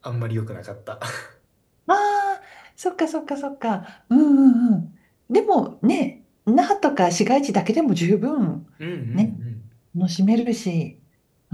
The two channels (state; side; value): identical; both; correlation 1.00